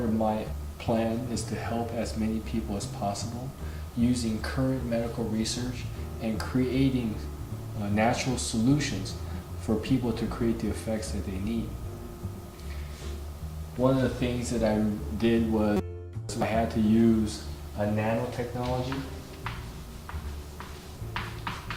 my plan is to help as many people as possible using current medical research and creating natural solutions for people to create the effects that they need. One of the things that I did was I had to use a nanotechnology.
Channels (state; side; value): identical; both; correlation 1.00